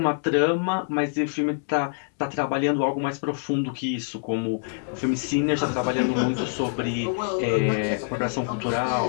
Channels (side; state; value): right; silent; 62 dB below the other